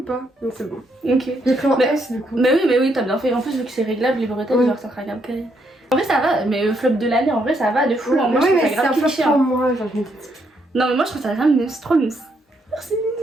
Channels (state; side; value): normal; both; correlation 0.75